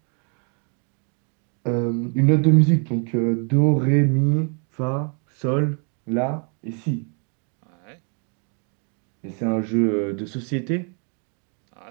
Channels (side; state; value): left; quieter; 39.4 dB